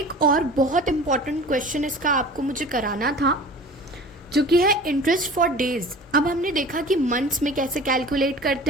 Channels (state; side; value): normal; both; correlation 0.41